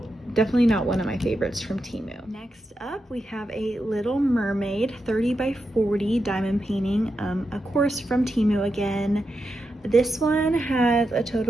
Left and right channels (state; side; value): normal; both; correlation 0.87